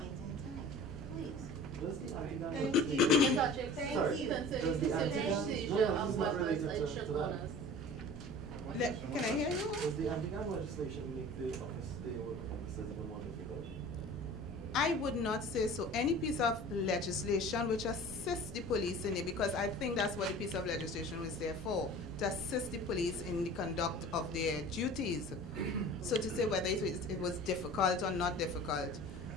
in time. Please. Thank you. Ms. Archie, Thank sorry, you. concerning Does the the anti-gun- seizure no, of it's not weapons related and to shot that. owners. Can I hear you? Does the anti-gun legislation make the office, the work of officers even more difficult? I would not say so. Any piece of legislation which assists the police in it, because I think that's what the piece of legislation was there for, to assist the police in the conduct of their duties. So to say whether it was difficult or not difficult,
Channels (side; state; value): both; normal; correlation 0.41